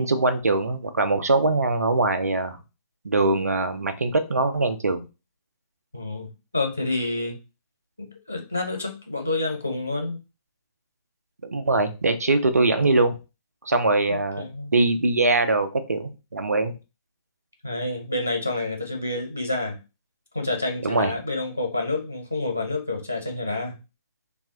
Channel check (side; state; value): both; inverted; correlation -0.63